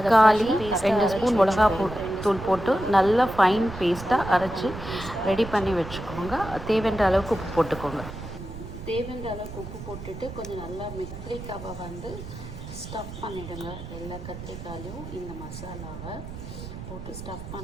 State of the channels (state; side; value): noise; right; rumble, 11 dB below the sound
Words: 2 ஸ்பூன் மிளகாத்தூள் போட்டு நல்லா ஃபைன் பேஸ்ட்டாக அரைச்சி ரெடி பண்ணி வச்சுக்கோங்க. தேவையான அளவுக்கு உப்பு போட்டுக்கோங்க. தேவையான அளவுக்கு உப்பு போட்டுட்டு கொஞ்சம் நல்லா கத்திரிக்காவை ஸ்டஃப் பண்ணிவிடுங்க. எல்லா கத்திரிக்காயிலையும் இந்த மசாலாவை போட்டு ஸ்டஃப்